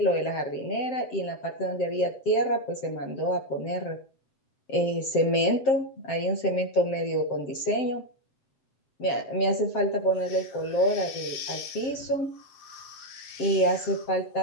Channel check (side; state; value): right; late; 7.6 ms